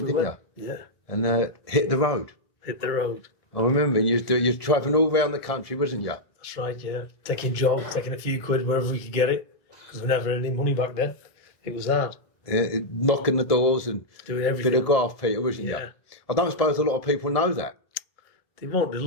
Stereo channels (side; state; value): right; late; 1.7 ms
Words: didn't you? Yeah. And hit the road. Hit the road. I remember you was travelling all around the country, wasn't you? That's right, yeah. Taking jobs, taking a few quid wherever we could get it, because we never had any money back then. It was hard. Yeah, knocking the doors and doing everything. Bit of graft, Peter, wasn't you? I don't suppose a lot of people know that. They won't.